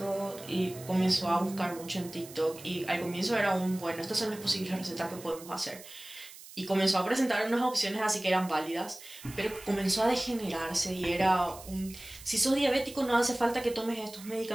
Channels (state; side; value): noise; right; hiss, 17 dB below the sound